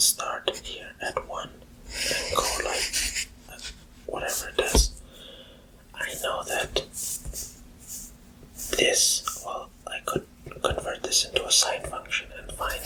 here at 1 and go like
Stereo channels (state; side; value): identical; both; correlation 1.00